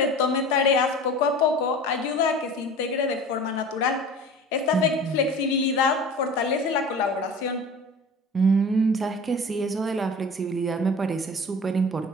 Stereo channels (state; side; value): normal; both; correlation 0.39